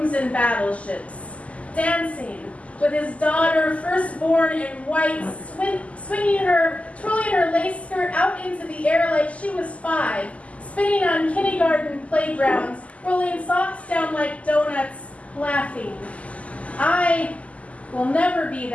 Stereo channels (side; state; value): right; late; 0.067 ms